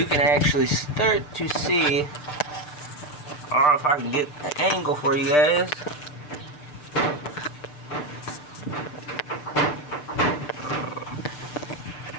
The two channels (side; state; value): right; late; 6.7 ms